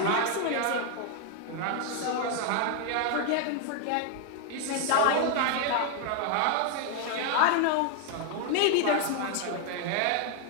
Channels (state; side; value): different; both; correlation 0.01